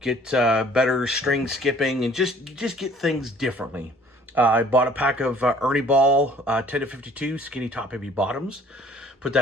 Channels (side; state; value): both; normal; correlation 0.54